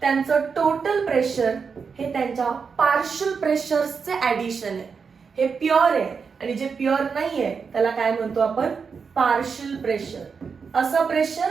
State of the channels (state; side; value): quieter; left; 5.6 dB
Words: टोटल प्रेशर हे त्यांच्या पार्शियल प्रेशर्सचे ऍडिशन आहे. हे प्युअर आहे आणि जे प्युअर नाहीये त्याला काय म्हणतो आपण, पार्शियल प्रेशर. असं